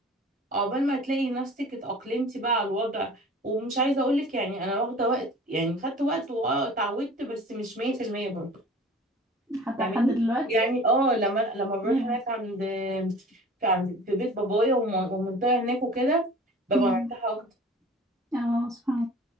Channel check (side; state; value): both; normal; correlation 0.44